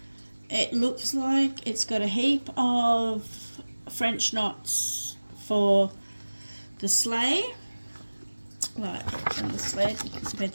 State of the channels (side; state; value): both; inverted; correlation -1.00